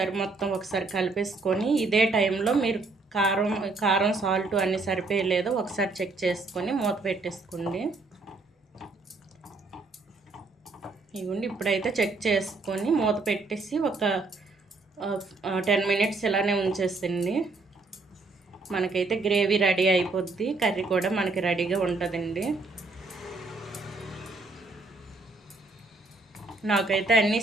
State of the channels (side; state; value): left; quieter; 3.6 dB